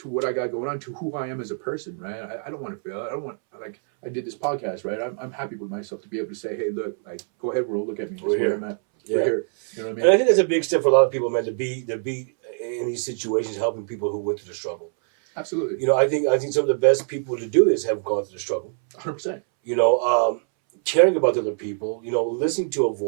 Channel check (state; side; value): silent; left; 63 dB below the other